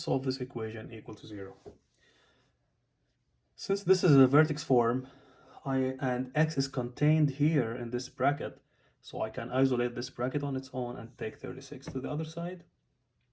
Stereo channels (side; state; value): both; identical; correlation 1.00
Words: this equation equal to 0. Since this is a vertex form and x is contained here in this bracket, so I can isolate this bracket on its own and take 36 to the other side.